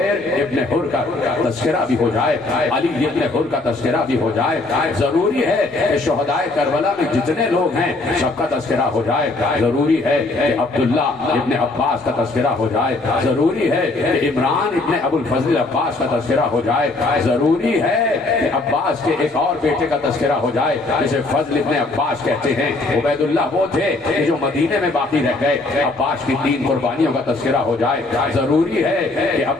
ابن حر کا تذکرہ بھی ہو جائے، علی ابن حر کا تذکرہ بھی ہو جائے، ضروری ہے کہ شہدائے کربلا میں جتنے لوگ ہیں سب کا تذکرہ ہو جائے، ضروری ہے کہ عبداللہ ابن عباس کا تذکرہ ہو جائے، ضروری ہے کہ عمران ابن ابو الفضل عباس کا تذکرہ ہو جائے، ضروری ہے کہ عباس کے ایک اور بیٹے کا تذکرہ ہو جائے جسے فضل ابن عباس کہتے ہیں۔ عبید اللہ وہ تھے کہ جو مدینے میں باقی رہ گئے، عباس کی 3 قربانیوں کا تذکرہ ہو جائے، ضروری ہے کہ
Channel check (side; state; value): right; quieter; 3.1 dB